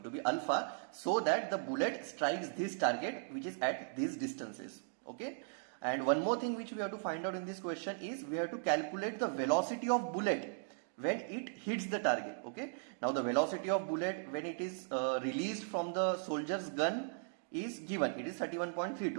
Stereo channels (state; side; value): silent; left; digital silence